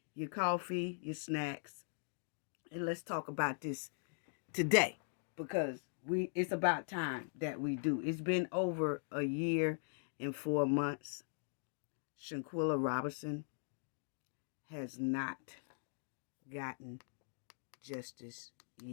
your coffee, your snacks, and let's talk about this today because it's about time that we do. It's been over a year and 4 months. Shanquella Robinson has not gotten justice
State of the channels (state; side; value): silent; right; digital silence